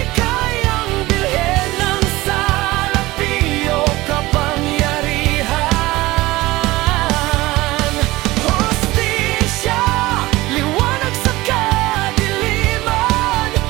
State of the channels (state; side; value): quieter; left; 19.2 dB